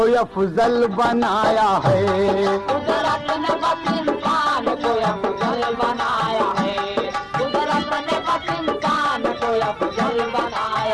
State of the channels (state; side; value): identical; both; correlation 1.00